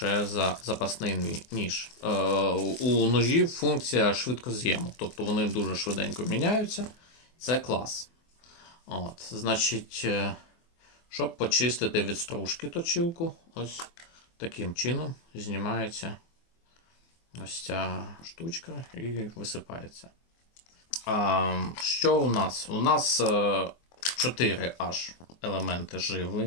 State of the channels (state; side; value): late; right; 24 ms